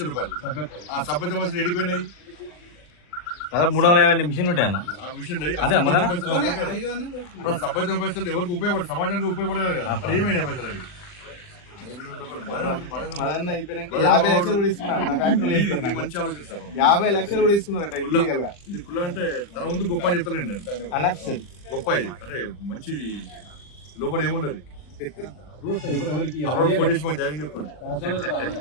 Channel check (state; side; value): late; right; 40 ms